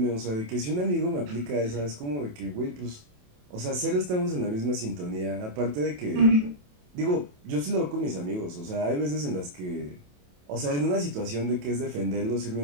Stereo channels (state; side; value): late; left; 28 ms